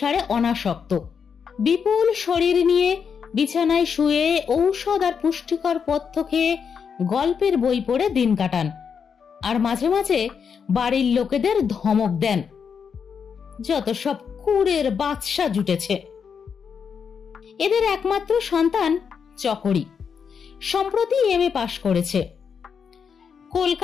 অনাসক্ত। বিপুল শরীর নিয়ে বিছানায় শুয়ে ঔষধ আর পুষ্টিকর পথ্য খেয়ে গল্পের বই পড়ে দিন কাটান, আর মাঝে মাঝে বাড়ির লোকেদের ধমক দেন, যত সব কুড়ের বাদশা জুটেছে। এদের একমাত্র সন্তান চকরি, সম্প্রতি এমএ পাশ করেছে।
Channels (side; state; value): right; quieter; 6.6 dB